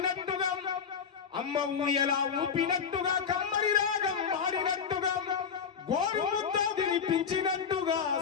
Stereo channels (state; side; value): quieter; right; 6.7 dB